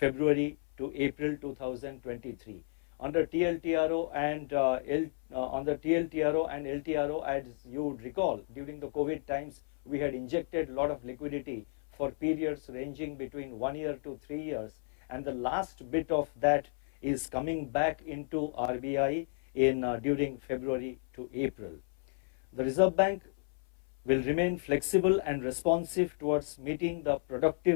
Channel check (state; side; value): silent; right; 56 dB below the other